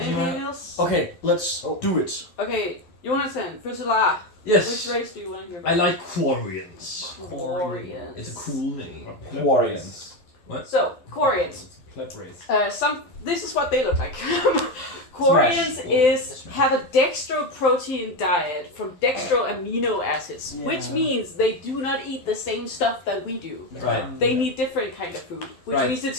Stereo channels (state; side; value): late; right; 12 ms